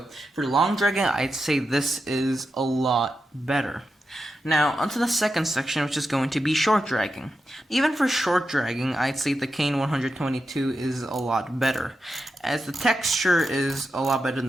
for long dragging, I'd say this is a lot better. Now onto the second section, which is going to be short dragging. Even for short dragging, I'd say the Kain 122 is a lot better, as the texture is a lot better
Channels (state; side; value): normal; both; correlation 0.88